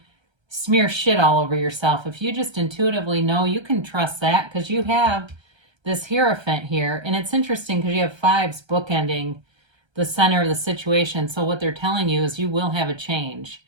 smear shit all over yourself. If you just intuitively know, you can trust that, because you have this Hierophant here. And it's interesting because you have fives bookending the center of the situation. So what they're telling you is you will have a change.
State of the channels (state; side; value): late; left; 1.3 ms